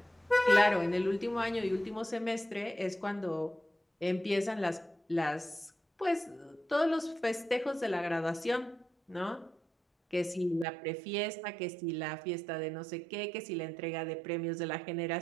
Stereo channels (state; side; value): drops out; left; at 10.7 s